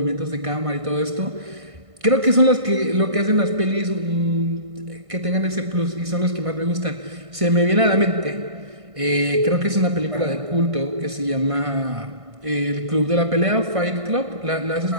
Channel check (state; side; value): late; left; 1.5 ms